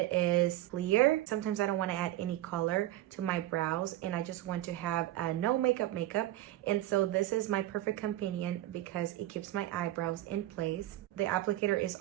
is clear. Sometimes I don't want to add any color to my brows and I just want to have a no makeup. And so this is my perfect companion because it keeps my eyebrows in place. The applicator is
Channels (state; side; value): quieter; left; 14.9 dB